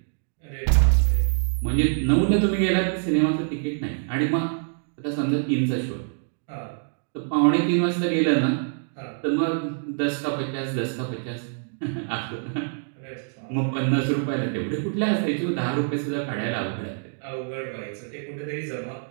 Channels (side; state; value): left; silent; digital silence